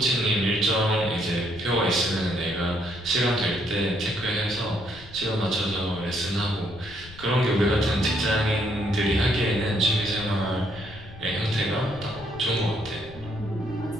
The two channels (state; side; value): noise; left; rumble, 18 dB below the sound